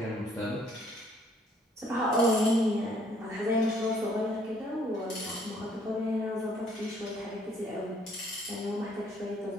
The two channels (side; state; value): both; normal; correlation 0.63